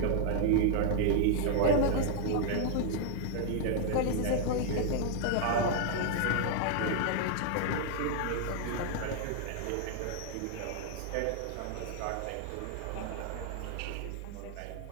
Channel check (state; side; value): different; both; correlation -0.01